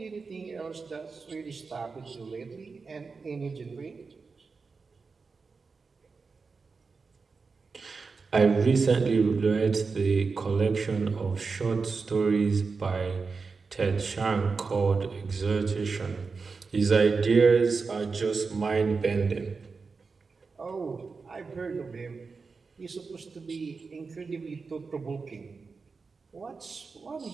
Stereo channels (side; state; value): left; quieter; 4.6 dB